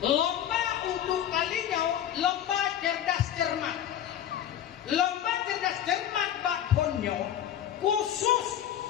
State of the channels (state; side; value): quieter; right; 10.5 dB